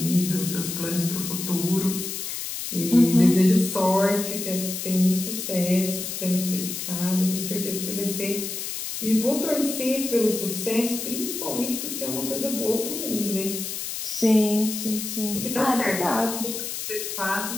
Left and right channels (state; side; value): noise; left; hiss, 5 dB below the sound